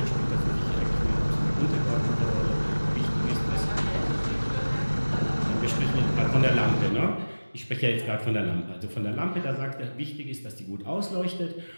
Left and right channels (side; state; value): both; inverted; correlation -1.00